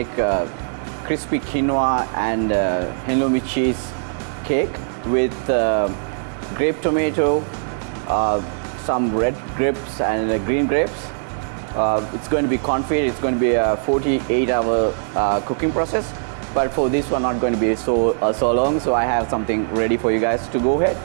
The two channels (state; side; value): silent; left; digital silence